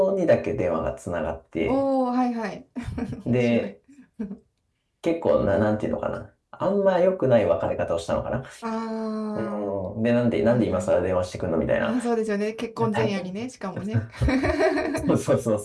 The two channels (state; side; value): identical; both; correlation 1.00